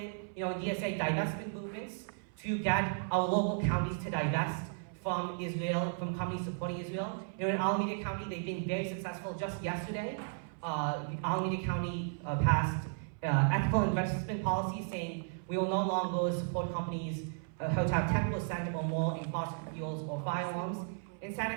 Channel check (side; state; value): left; silent; 55 dB below the other